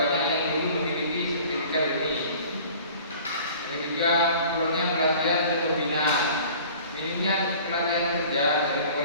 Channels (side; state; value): both; inverted; correlation -0.46